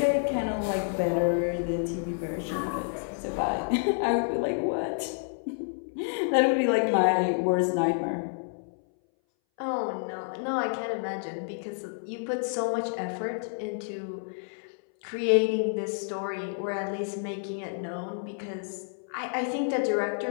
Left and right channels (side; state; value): right; silent; 58 dB below the other